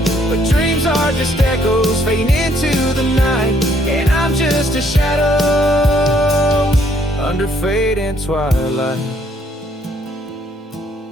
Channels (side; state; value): both; normal; correlation 0.67